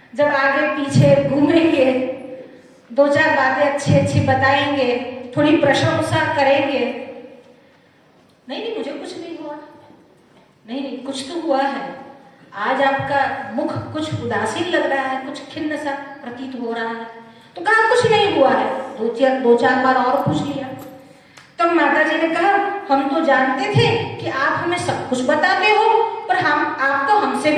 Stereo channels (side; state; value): both; identical; correlation 1.00